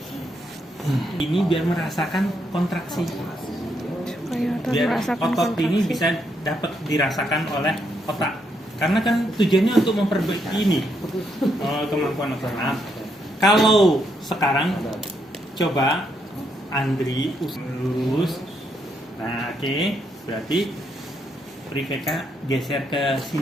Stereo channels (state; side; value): normal; both; correlation 0.77